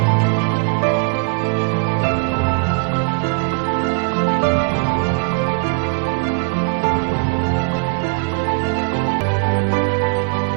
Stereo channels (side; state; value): left; quieter; 33.2 dB